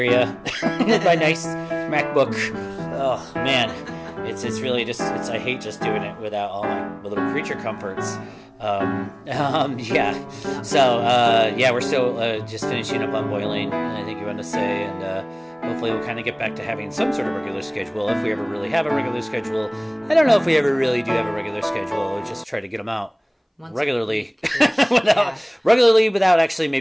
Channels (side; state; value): both; identical; correlation 1.00